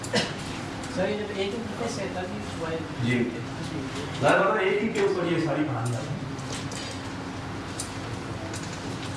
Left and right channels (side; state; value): both; identical; correlation 1.00